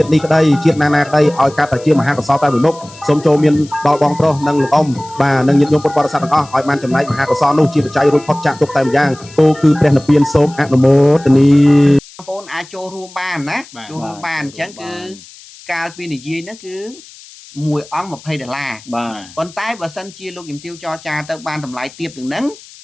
đi đây chiết nana đây oi cá tại chiết mà hai con sao tay mười mốc sông châu miền đo bong pro nâng lục ông và nâng nhiệt nhôm bột bò sa bằng o oi man chấm này mà hai con sao nô chiết chạy rồi phật chạm tục tay giang cô cứ bèn lập biên sôm ác mô tani បងប្អូនអាចចូលរួមបានណាចូលរួមបានអញ្ចឹងគឺកាលពីនិយាយហ្នឹងគឺ1អង្គ$20ប៉ុន្តែបើសិនជាលោកជំទាវចរចាទៅបានតម្លៃទាបជាងហ្នឹង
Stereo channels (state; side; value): noise; left; hiss, 21 dB below the sound